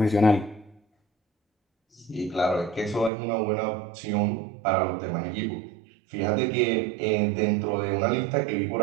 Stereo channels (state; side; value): drops out; left; at 3.1 s